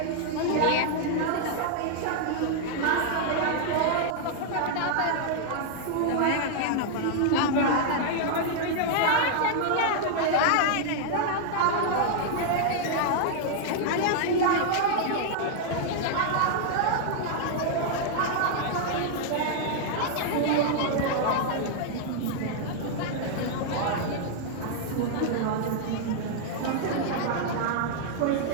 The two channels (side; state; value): both; different; correlation -0.01